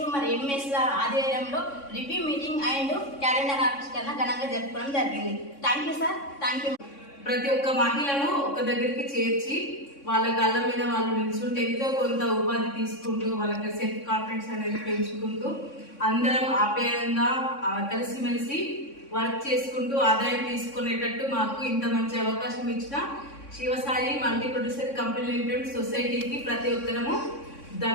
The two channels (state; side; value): late; right; 3.6 ms